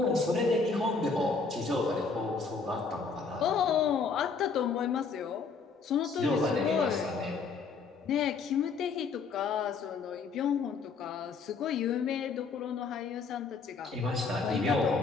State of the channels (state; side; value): quieter; right; 4.8 dB